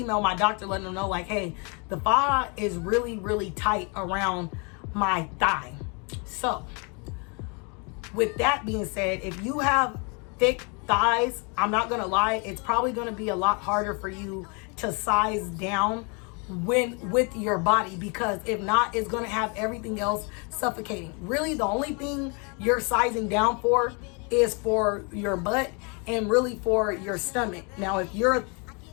my doctor letting them know like, hey, the faja is really, really tight around my thigh. So with that being said, if you have thick thighs, I'm not gonna lie, it's probably gonna be a lot harder for you to size down when with your body, because if not, it's going to have everything else suffocating. Really, the only thing you're sizing down for is for your butt and really for your stomach. Now, if you're a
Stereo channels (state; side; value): quieter; right; 33.8 dB